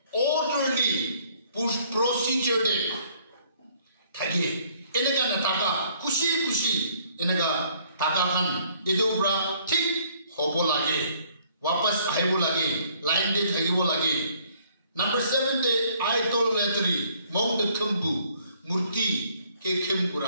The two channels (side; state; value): both; inverted; correlation -0.62